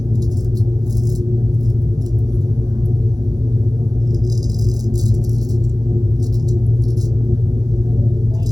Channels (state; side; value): late; left; 0.19 ms